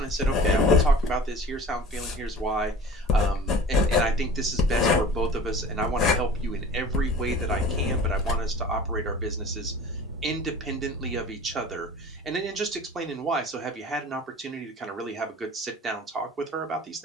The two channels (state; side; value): normal; both; correlation 0.42